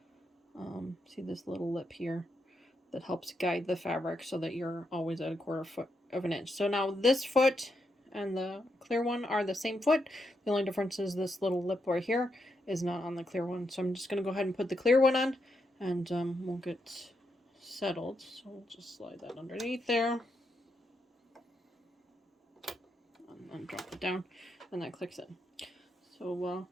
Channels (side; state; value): both; normal; correlation 0.82